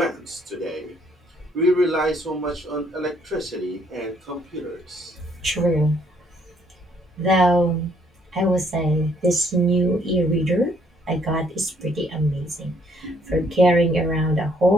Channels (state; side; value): normal; both; correlation 0.66